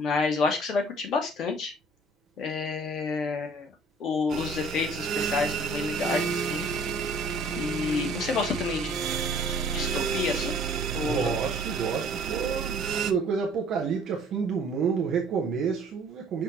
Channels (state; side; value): normal; both; correlation 0.54